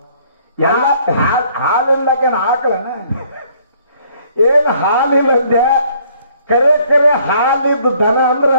ಎಲ್ಲ ಹಾಲಿಲ್ಲಕ ಹಾಕಲನ ಏನ್ ಹಾಲಿಲ್ಲ ಅಂದೆ ಕರೆ ಕರೆ ಹಾಲಿದ್ದು ದನ ಅಂದ್ರ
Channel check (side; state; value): both; inverted; correlation -0.62